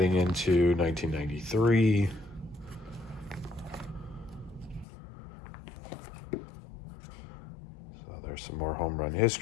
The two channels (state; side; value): drops out; right; at 4.9 s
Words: into 1993. So there's some more home run